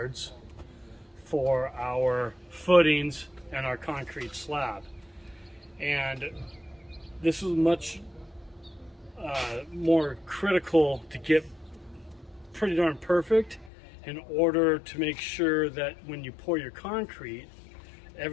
for our footings and our concrete slab. And this is much more critical to get pretty darn perfect in order to make sure that when you pour your concrete,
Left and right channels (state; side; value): drops out; right; at 13.7 s